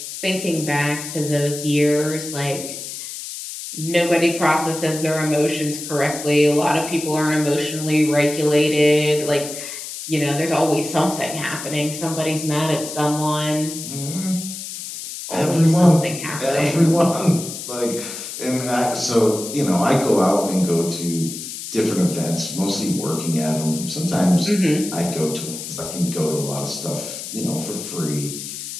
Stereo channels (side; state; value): left; noise; hiss, 9 dB below the sound